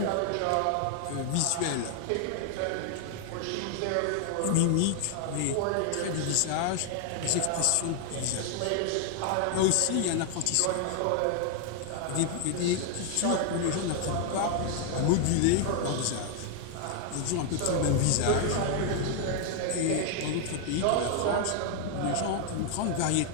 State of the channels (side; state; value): both; different; correlation 0.00